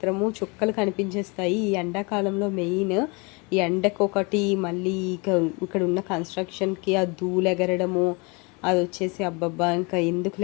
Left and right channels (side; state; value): right; quieter; 29.6 dB